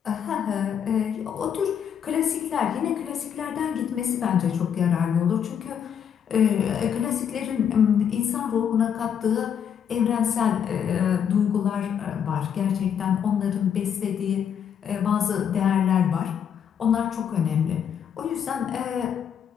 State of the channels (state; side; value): quieter; right; 8.3 dB